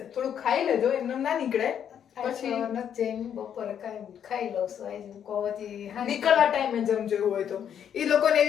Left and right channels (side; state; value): right; quieter; 8.9 dB